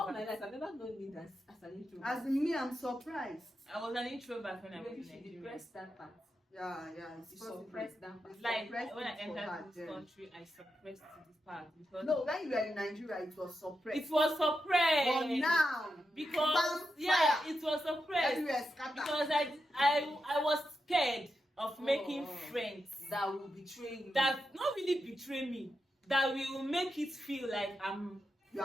my introvert. life I've never known me as an introvert. As in me, I'm surprised. I was an introvert when I was Maybe in she Nigeria. depressed that part. Yeah, it's You possible. suppressed that part. Like Suppressed when I it for her entered this then. country, I suppressed this part because No, when you were in Nigeria, it was suppressed. it was suppressed. But now, Because fire. it was suppressed everywhere scattered. because I was scared of making friends That will betray you. that not really betray me, that will make it feel like You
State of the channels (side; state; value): both; normal; correlation 0.87